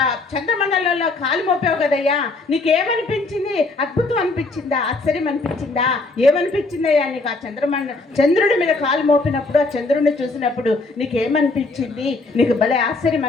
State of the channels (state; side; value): quieter; right; 3.4 dB